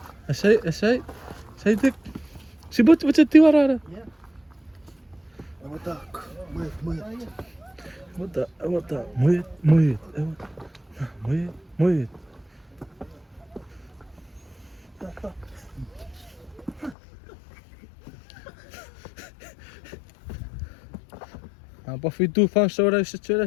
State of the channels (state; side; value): drops out; right; at 16.9 s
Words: Say, Dick. Si bot tiwarara. Yeah. Muit. Apa fitu fan sora se